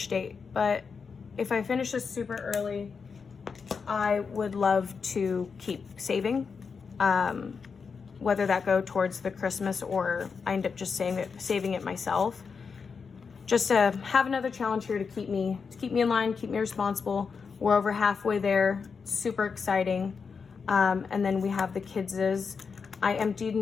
date. But if I finish this super early, I would love to keep saving, whether that go towards the Christmas or I end up just saving it myself. Just to have another challenge here to keep me in line, keep me responsible. We're over halfway there, super exciting. And then we have the kids's. I emptied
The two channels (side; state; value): right; quieter; 5.5 dB